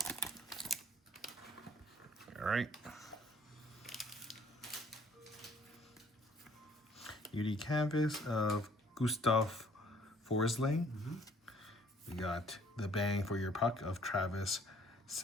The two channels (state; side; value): normal; both; correlation 0.59